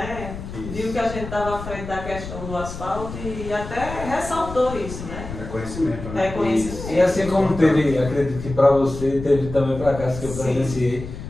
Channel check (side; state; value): left; noise; rumble, 10 dB below the sound